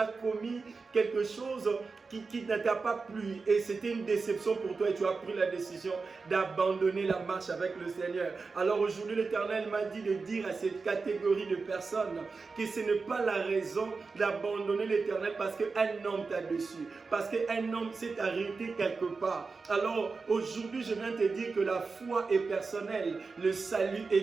commis quelque chose qui ne t'a pas plu. Et c'était une déception pour toi et tu as pris la décision d'abandonner la marche avec le Seigneur. Alors aujourd'hui, l'Éternel m'a dit de dire à cette catégorie de personnes que ce n'est pas la raison d'abandonner l'Éternel parce qu'un homme t'a déçu. Parce qu'un homme s'est arrêté quelque part. Alors aujourd'hui, je viens te dire que la foi est personnelle, le salut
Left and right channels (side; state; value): left; quieter; 4.4 dB